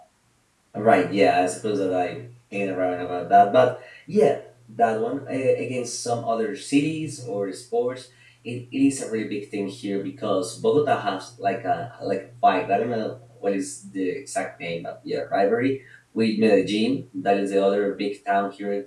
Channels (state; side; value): identical; both; correlation 1.00